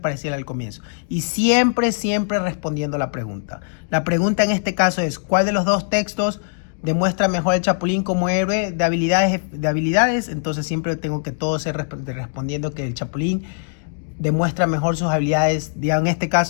al comienzo. Y siempre respondiendo la pregunta. La pregunta en este caso es, ¿cuál de los dos textos demuestra mejor el Chapulín como héroe de habilidades? Entonces siempre tengo que todo ser respondiendo que el Chapulín demuestra mejor sus habilidades, digamos, en este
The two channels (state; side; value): silent; right; digital silence